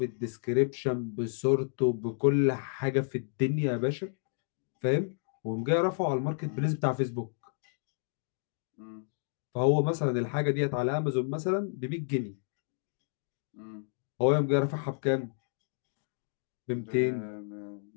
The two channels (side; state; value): right; silent; digital silence